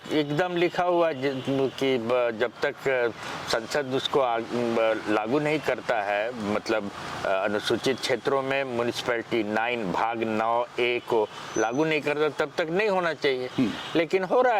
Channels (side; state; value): both; identical; correlation 1.00